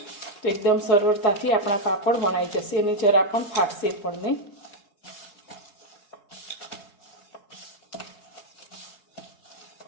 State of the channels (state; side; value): late; right; 4.8 ms